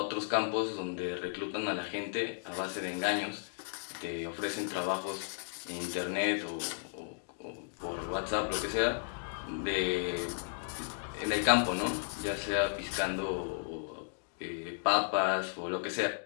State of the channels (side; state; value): right; silent; digital silence